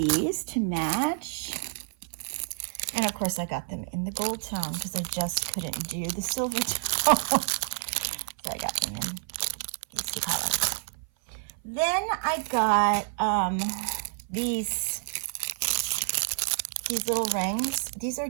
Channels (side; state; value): left; silent; 56 dB below the other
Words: to match. And of course I got them in the gold tone because I just couldn't do the silver tone. So I got them in these 2 colors. Then I got these little rings. These are